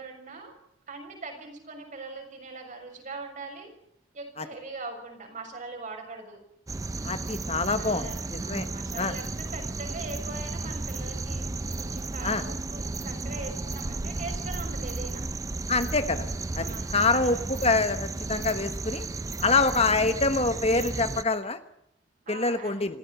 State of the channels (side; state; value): both; normal; correlation 0.11